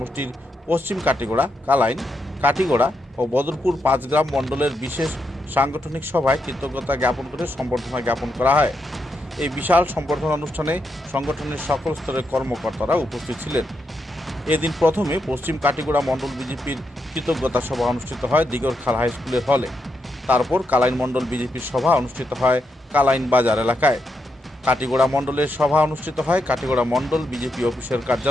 পশ্চিম কাটিগড়া, কালাইন, কাটিগড়া ও বদরপুর 5 গ্রাম মণ্ডলের বিশেষ সাংগঠনিক সভায় কৃতজ্ঞতা জ্ঞাপন করে সম্বর্ধনা জ্ঞাপন করা হয়। এই বিশাল সম্বর্ধনা অনুষ্ঠানে সংগঠনের সকল স্তরের কর্মকর্তারা উপস্থিত ছিলেন। এদিন প্রথমে পশ্চিম কাটিগড়া মণ্ডল বিজেপির কৃতজ্ঞতা সভা অনুষ্ঠিত হয় দিগরখাল হাই স্কুলের হলে। তারপর কালাইন মণ্ডল বিজেপির সভা অনুষ্ঠিত হয় কালাইন বাজার এলাকায়। কাটিগড়া মণ্ডলের সভা অনুষ্ঠিত হয় কাটিগড়া মণ্ডল বিজেপি অফিসের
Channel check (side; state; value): both; normal; correlation 0.82